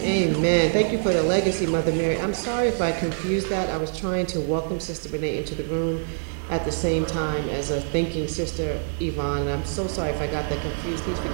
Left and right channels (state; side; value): silent; left; digital silence